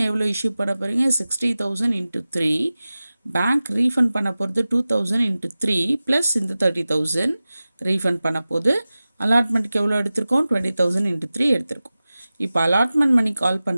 எவ்வளோ இஷ்யூ பண்ண போகிறீங்க, 60,000 × 3. பேங்க் ரீஃபண்ட் பண்ண போகிறது 2,000 × 3 ப்ளஸ் இந்த 30,000 ரீஃபண்ட் பண்ண போது. அலாட்மெண்ட்டுக்கு எவ்வளோ எடுத்திருக்கோம், 20,000 × 3 எடுத்திருக்கோம். இப்போ அலாட்மெண்ட் மணி கால்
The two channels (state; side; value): inverted; both; correlation -0.96